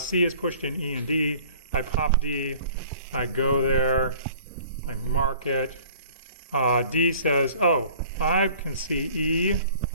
is pushed in E and D. I pop D. I go there. I mark it. D says, oh, I can see E,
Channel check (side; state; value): both; inverted; correlation -0.50